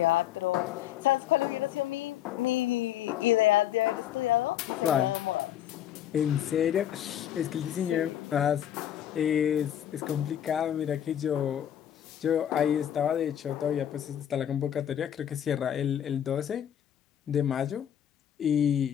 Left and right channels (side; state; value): right; quieter; 10.6 dB